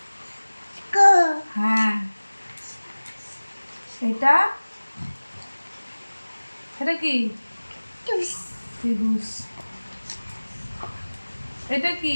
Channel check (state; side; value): inverted; both; correlation -1.00